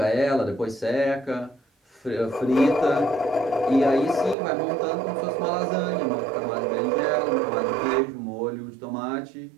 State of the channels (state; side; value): drops out; left; at 4.4 s